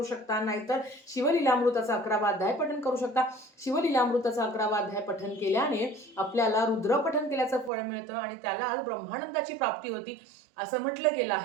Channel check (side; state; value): left; drops out; at 7.7 s